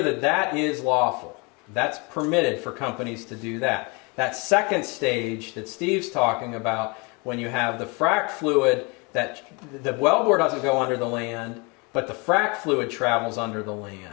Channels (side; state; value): right; quieter; 29.5 dB